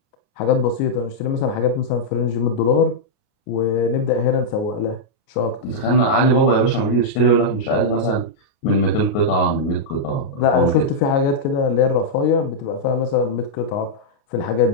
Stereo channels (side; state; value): right; late; 29 ms